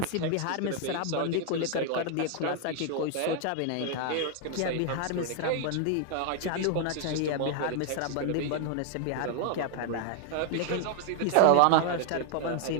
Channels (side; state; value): both; different; correlation 0.00